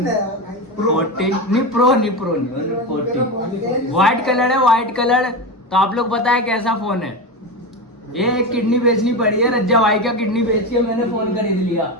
नहीं प्रो नहीं 14। व्हाइट कलर है, व्हाइट कलर। तो आप लोग बताएं कैसा फोन है। ये एक किडनी बेचनी पड़ी है, रज्जा भाई का किडनी बेच के मैंने फोन खरीद लिया।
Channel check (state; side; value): normal; both; correlation 0.19